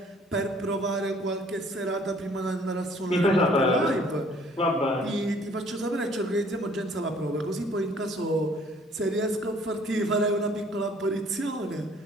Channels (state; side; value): normal; both; correlation 0.58